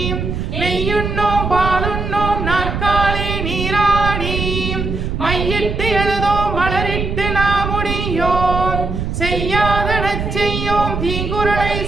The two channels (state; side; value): noise; right; rumble, 3 dB below the sound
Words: நெய்யுண்ணோம் பாலுண்ணோம் நாற்காலே நீராடி மையிட்டு எழுதோம் மலரிட்டு நாம் முடியோம் செய்யாதடச் செய்யோம் தீங்குறளை